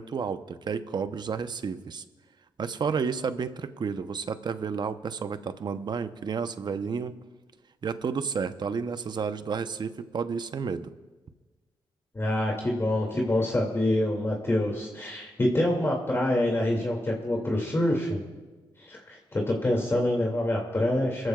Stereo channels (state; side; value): normal; both; correlation 0.81